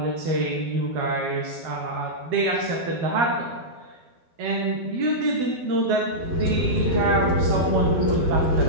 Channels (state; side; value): late; left; 12 ms